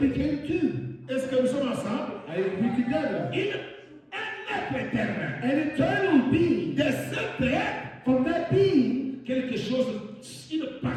two. Est-ce que nous sommes ensemble? I agree together. Un être éternel. An eternal being. De cet être, From that being, quelque chose, une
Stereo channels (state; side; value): identical; both; correlation 1.00